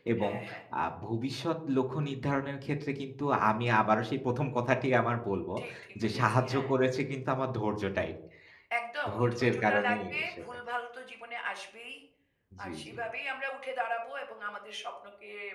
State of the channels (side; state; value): both; identical; correlation 1.00